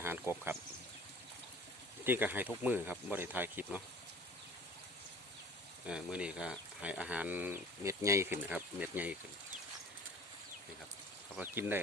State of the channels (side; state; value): both; normal; correlation 0.46